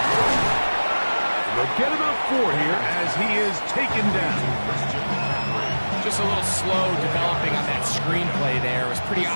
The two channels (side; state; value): both; inverted; correlation -1.00